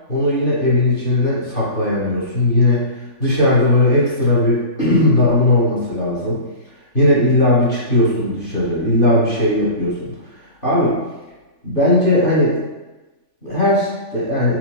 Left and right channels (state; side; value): late; right; 3.5 ms